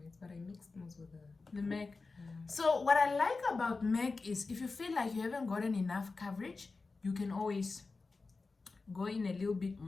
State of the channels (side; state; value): right; quieter; 4.0 dB